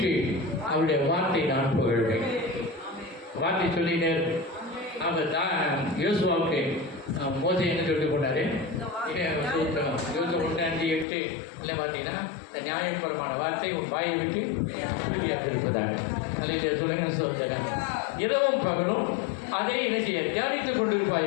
அவருடைய வார்த்தை நான் புகழ்வேன். வார்த்தை சொல்லினே அவர் தான் யோசுவாவுக்கு மோசை என்ன சொல்லிட்டு போனாரு? சூத்திரம் 25:8 இல்லை பார்த்தீங்கன்னா, நியாயபரமான வார்த்தை உன் வாயை விட்டு இருப்பதாக. அல்லேலூயா சொல்லுங்க. சோதரன். இரவும் பகலும் அதை இணைச்சிய தியானித்துக்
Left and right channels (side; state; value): right; drops out; at 11.1 s